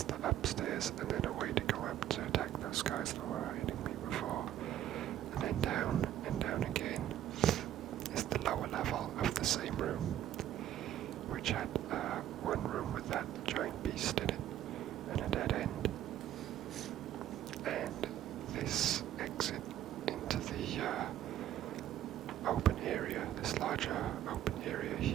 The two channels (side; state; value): left; quieter; 11.8 dB